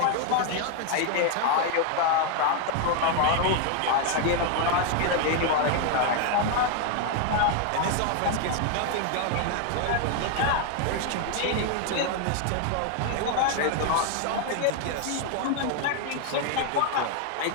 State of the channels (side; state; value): both; different; correlation 0.01